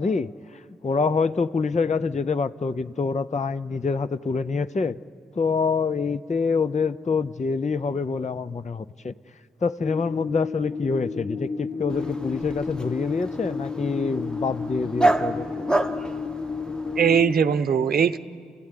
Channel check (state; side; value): normal; both; correlation 0.72